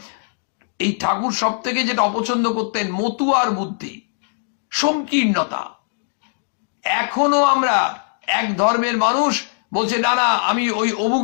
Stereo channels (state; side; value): silent; right; digital silence